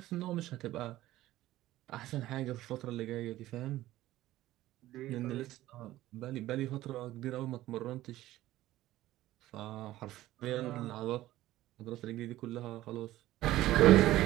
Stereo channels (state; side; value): quieter; left; 15.5 dB